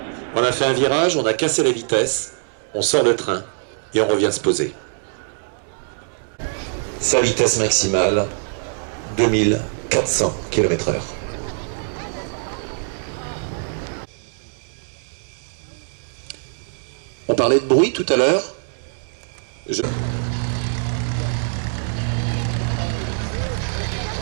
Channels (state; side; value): silent; left; 63 dB below the other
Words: On a fait un virage, on a cassé la vitesse, on sort le train et on revient se poser. Sa vitesse maximale, 2400 km/h. On parlait de bruit tout à l'heure.